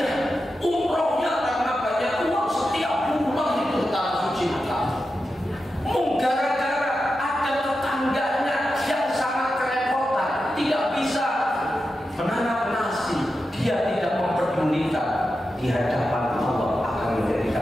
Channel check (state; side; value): normal; both; correlation 0.90